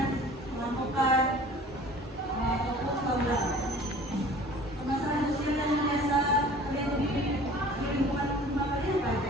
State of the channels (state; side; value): normal; both; correlation 0.46